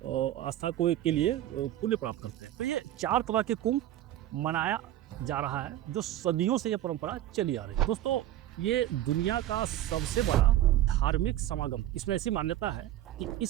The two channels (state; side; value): quieter; left; 13.3 dB